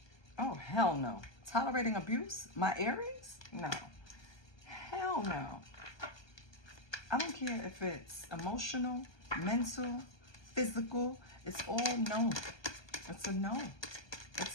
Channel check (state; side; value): late; right; 1.2 ms